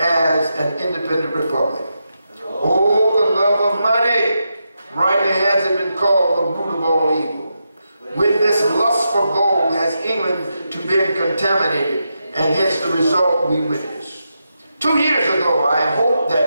an independent republic. Oh, the love of money! Rightly has it been called the root of all evil. With this lust for been contaminated, and hence the result we witnessed. 2 years ago, I hoped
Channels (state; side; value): inverted; both; correlation -0.86